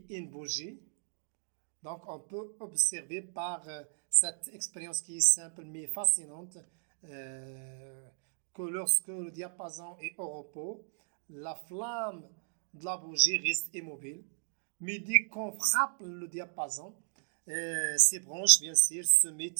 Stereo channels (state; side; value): silent; left; digital silence